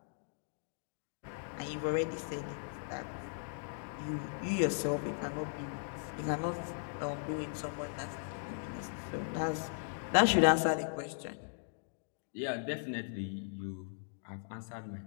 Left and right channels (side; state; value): right; silent; digital silence